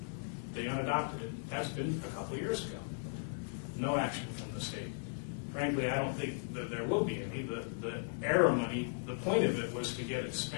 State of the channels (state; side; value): silent; right; 53 dB below the other